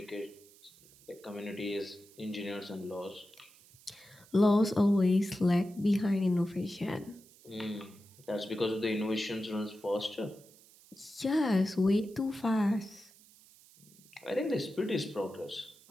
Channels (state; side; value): noise; right; hiss, 25 dB below the sound